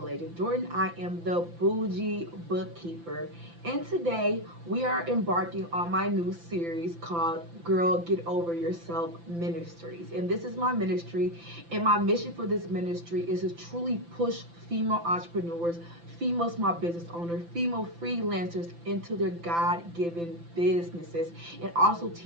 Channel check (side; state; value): left; late; 5.9 ms